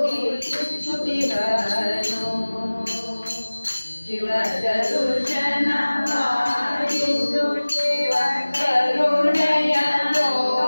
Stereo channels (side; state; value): both; inverted; correlation -1.00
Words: ಸುತಿಹನು ಶಿವ ದರುಶನ ಮಾಡಿದ್ದು ಶಿವ ಕರುಣೆಯ